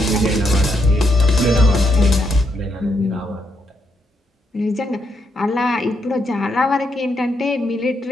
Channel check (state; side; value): normal; both; correlation 0.78